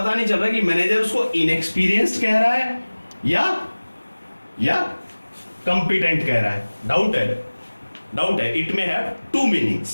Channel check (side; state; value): both; inverted; correlation -1.00